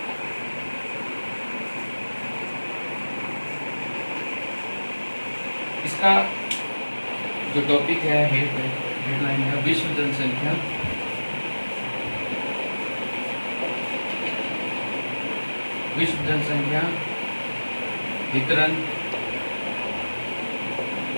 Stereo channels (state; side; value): inverted; both; correlation -1.00